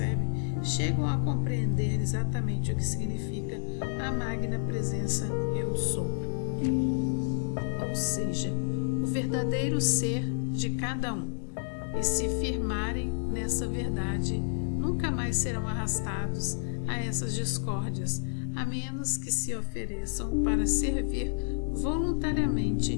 chegam a compreender exatamente o que significa a magna presença Eu Sou. Ou seja, o verdadeiro ser de cada um. E se firmarem nessa verdade, nunca mais serão arrastados a essas discórdias, a menos que se ofereçam para servir voluntariamente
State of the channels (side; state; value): right; silent; digital silence